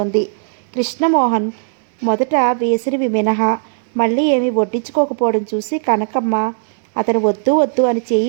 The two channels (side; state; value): left; silent; digital silence